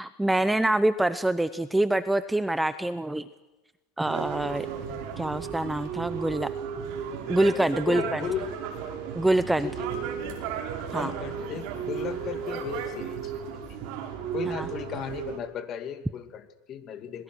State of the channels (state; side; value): normal; both; correlation 0.83